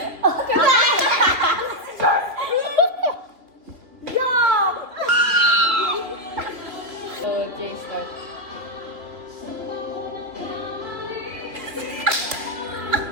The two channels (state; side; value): late; left; 2.9 ms